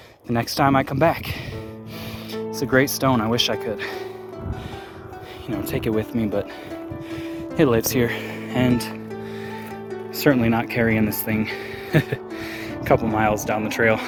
the next time I come back. It's a great stone. I wish I could, take it with me, but it lives here, and certainly not carrying this thing a couple miles down the trail.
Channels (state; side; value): identical; both; correlation 1.00